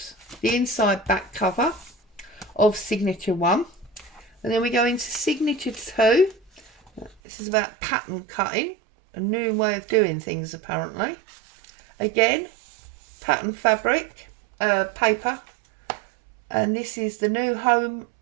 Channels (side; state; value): left; drops out; at 7.2 s